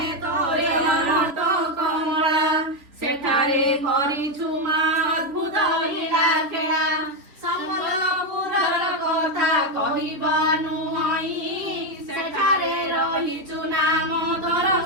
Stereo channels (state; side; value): late; left; 3.6 ms